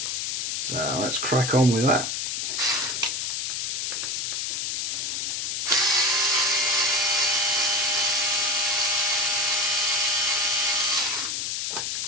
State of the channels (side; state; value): left; noise; hiss, 1 dB below the sound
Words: So let's crack on with that.